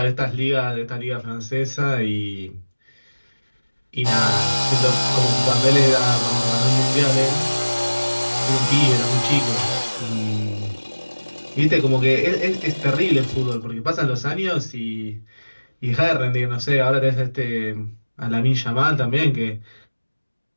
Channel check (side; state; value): both; inverted; correlation -1.00